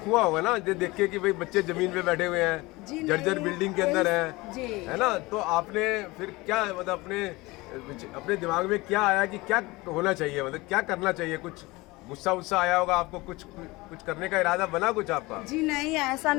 होगा ना ये देख के कि भाई बच्चे ज़मीन पे बैठे हुए हैं, जर्जर बिल्डिंग के अंदर हैं, है ना? तो आपने फिर क्या मतलब अपने दिमाग में क्या आया कि क्या होना चाहिए, मतलब क्या करना चाहिए? कुछ गुस्सा आया होगा आपको, कुछ करने का इरादा बना कुछ आपका? जी नहीं, ऐसा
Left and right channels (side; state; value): right; quieter; 22.1 dB